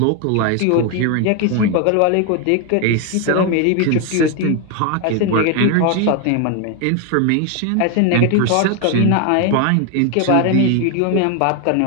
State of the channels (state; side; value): different; both; correlation 0.01